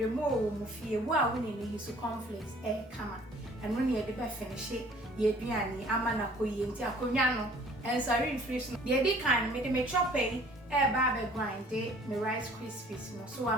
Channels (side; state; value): both; normal; correlation 0.53